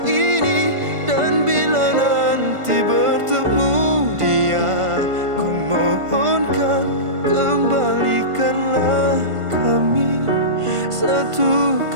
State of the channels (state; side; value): late; left; 1.5 ms